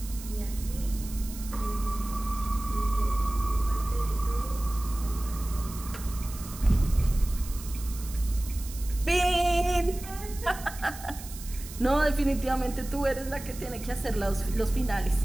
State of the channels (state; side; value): noise; right; hiss, 14 dB below the sound